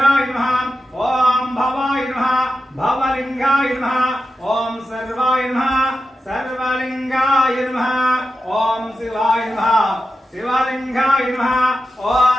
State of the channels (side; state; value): both; normal; correlation 0.91